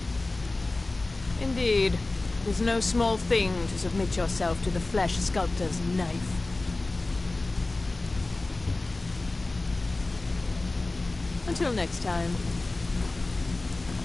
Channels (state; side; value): quieter; right; 3.1 dB